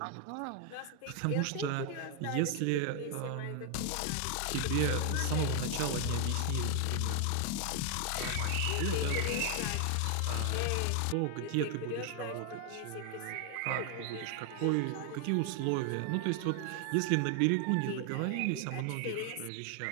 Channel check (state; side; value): different; both; correlation 0.00